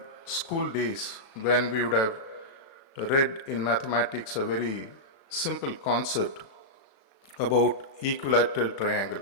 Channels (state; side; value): late; right; 36 ms